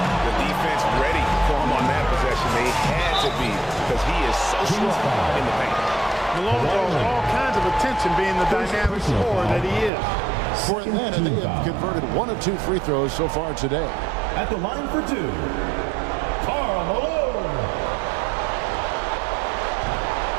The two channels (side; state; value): left; drops out; at 9.9 s